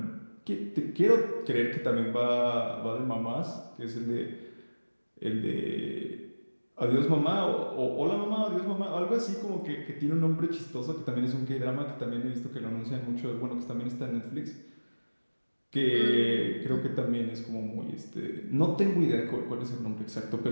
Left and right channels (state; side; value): inverted; both; correlation -1.00